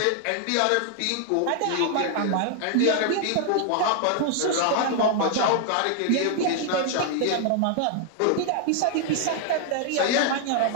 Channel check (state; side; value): different; both; correlation 0.00